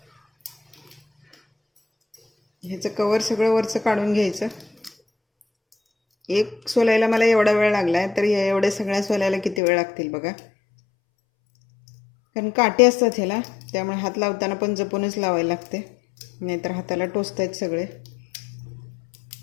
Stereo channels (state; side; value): drops out; right; at 9.6 s